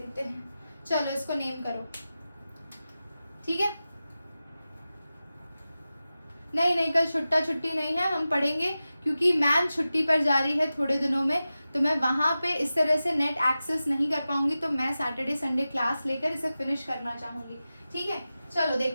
हैं। चलो इसको नेम करो, ठीक है। नहीं कल छुट्टी नहीं है, हम पढ़ेंगे क्योंकि मैम छुट्टी पर जा रही है थोड़े दिनों में, तो मैं वहां पे इस तरह से नेट एक्सेस नहीं कर पाऊंगी, तो मैं सैटरडे संडे क्लास लेकर इसे फिनिश करना चाहूंगी, ठीक है। चलो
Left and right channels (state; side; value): inverted; both; correlation -0.94